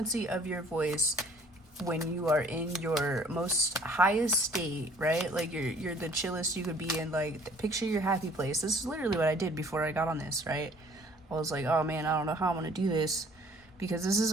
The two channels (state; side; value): normal; both; correlation 0.55